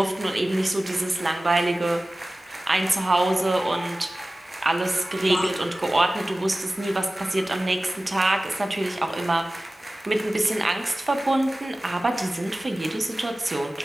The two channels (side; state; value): both; normal; correlation 0.97